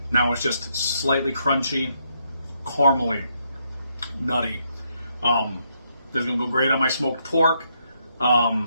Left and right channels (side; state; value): both; inverted; correlation -0.76